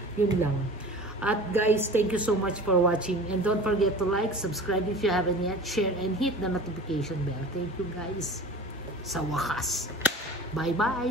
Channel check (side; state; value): both; normal; correlation 0.39